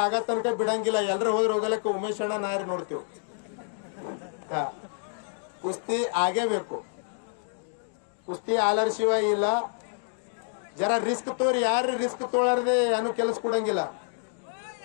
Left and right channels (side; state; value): right; silent; digital silence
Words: ಆಗ ತನಕ ಬಿಡಂಗಿಲ್ಲ. ಎಲ್ರ ಹೋದ್ರ ಹೋಗಲಕ್ಕ ಉಮೇಶ್ ಅಣ್ಣ ನಾರಿ ನೋಡ್ತೀವಿ. ಹಾ, ಕುಸ್ತಿ ಆಗೇಬೇಕು. ಕುಸ್ತಿ ಆಲರ್ ಶಿವ ಇಲ್ಲ. ಜರ ರಿಸ್ಕ್ ತೋರಿ. ಯಾರು ರಿಸ್ಕ್ ತೋಳಾರ್ದೆ ಏನು ಕೆಲಸ ಕೊಡಂಗಿಲ್ಲ.